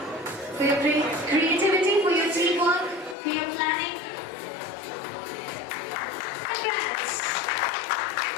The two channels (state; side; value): drops out; right; at 3.2 s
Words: For your creativity, for your teamwork, for your planning. Congrats.